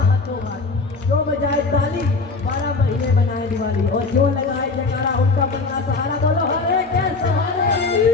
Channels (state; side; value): quieter; right; 3.9 dB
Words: हाथों हाथ, जो बजाए ताली 12 महीने बनाए दिवाली, और जो लगाए जयकारा उनका बनना सहारा। बोलो हरे के सहारे।